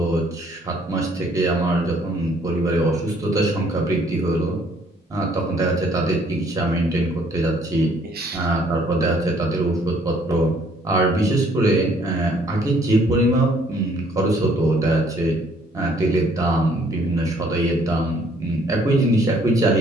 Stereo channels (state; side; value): normal; both; correlation 0.62